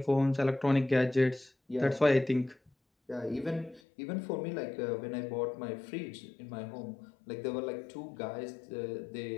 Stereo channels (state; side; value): drops out; right; at 3.8 s